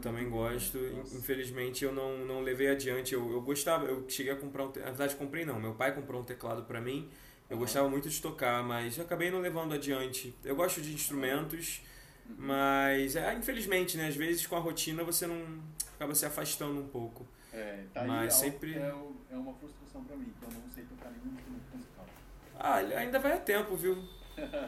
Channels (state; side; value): identical; both; correlation 1.00